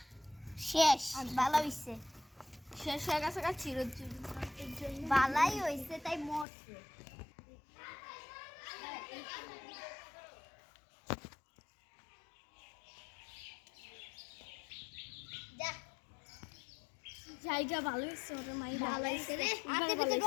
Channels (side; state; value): right; drops out; at 6.5 s